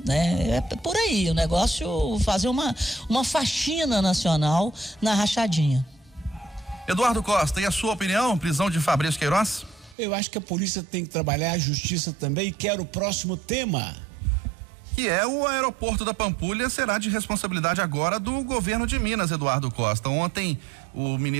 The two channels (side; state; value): left; drops out; at 10.0 s